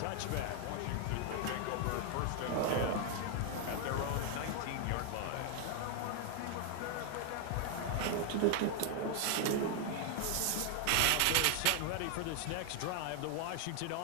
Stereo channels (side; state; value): both; different; correlation 0.00